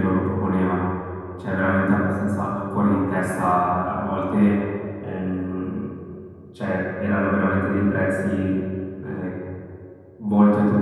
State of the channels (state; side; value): identical; both; correlation 1.00